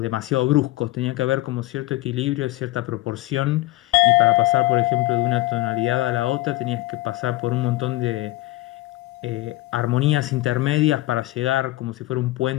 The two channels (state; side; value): quieter; right; 18.0 dB